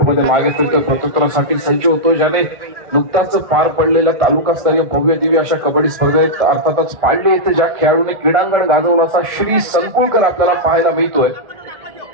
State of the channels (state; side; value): late; left; 1.5 ms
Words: मागे फिरतोय. प्रत्युत्तरासाठी सज्ज होतो. ज्याने नुकताच पार पडलेल्या तालुकास्तरीय भव्य दिव्य अशा कबड्डी स्पर्धेत अर्थातच पाडले येथे ज्या खेळाडूने क्रीडांगण गाजवलं असा श्री संकुळकर आपल्याला पाहायला मिळतोय.